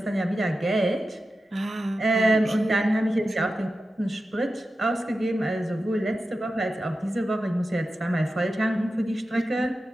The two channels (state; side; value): normal; both; correlation 0.92